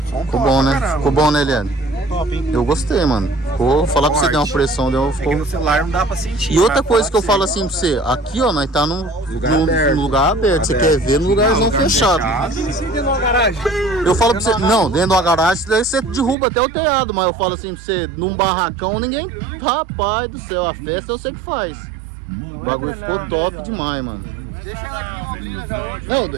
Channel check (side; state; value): left; drops out; at 16.4 s